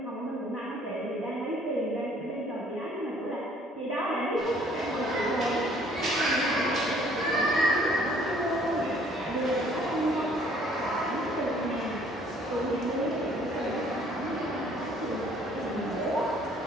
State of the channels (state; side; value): normal; both; correlation 0.59